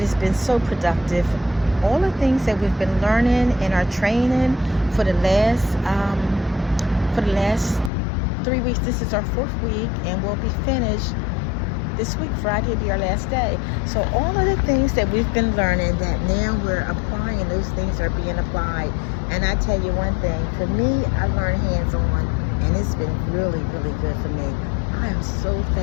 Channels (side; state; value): right; drops out; at 7.9 s